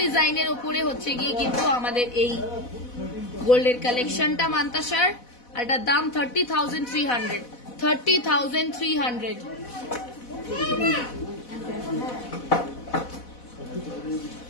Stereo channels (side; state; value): right; late; 4.1 ms